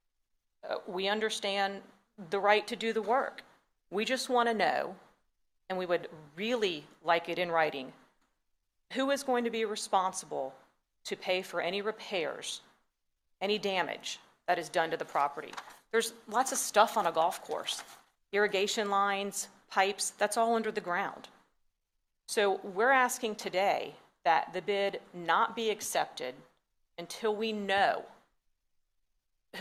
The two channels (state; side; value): identical; both; correlation 1.00